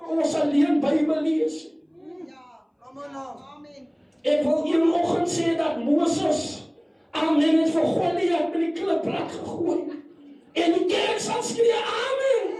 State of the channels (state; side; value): identical; both; correlation 1.00